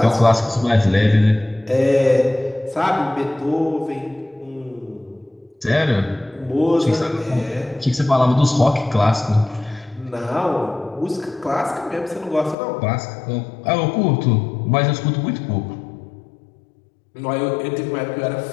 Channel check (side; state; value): right; drops out; at 12.6 s